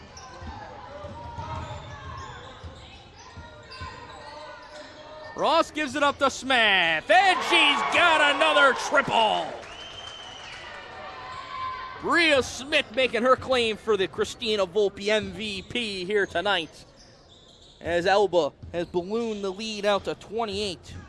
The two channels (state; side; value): identical; both; correlation 1.00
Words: Ross gives it up to Smith, and she's got another triple. Bria Smith making her claim for the Christina Volpe MVP here tonight, as Elba has ballooned the lead out to 28.